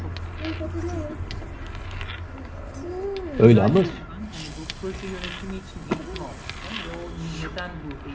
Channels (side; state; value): both; identical; correlation 1.00